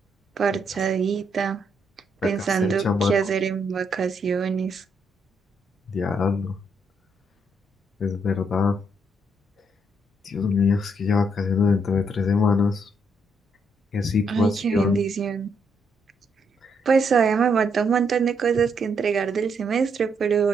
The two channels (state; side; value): normal; both; correlation 0.75